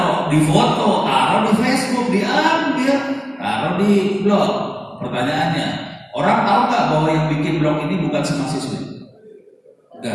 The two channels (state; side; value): identical; both; correlation 1.00